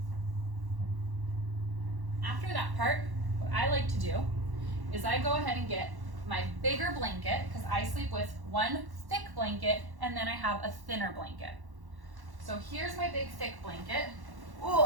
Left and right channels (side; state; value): left; late; 1.1 ms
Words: after that part, what I like to do is I go ahead and get my bigger blanket, because I sleep with one thick blanket and then I have a thinner blanket. So here's my big thick blanket. Ooh,